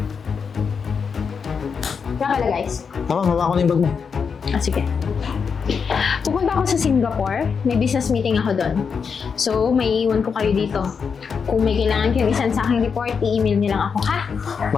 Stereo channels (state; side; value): quieter; right; 6.0 dB